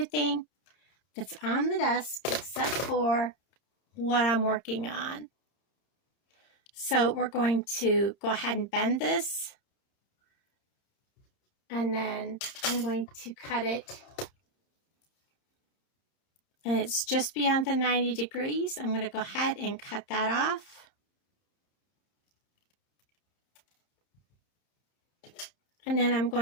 that's on the desk except for what I'm working on. So we're going to go ahead and bend this. And then I'm going to cut it. And it's just beyond the 90 degrees. I'm going to go ahead and cut that off. And then I'm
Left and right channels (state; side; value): late; right; 30 ms